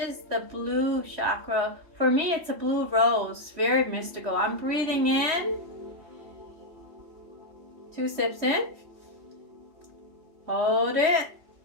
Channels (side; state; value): left; late; 3.1 ms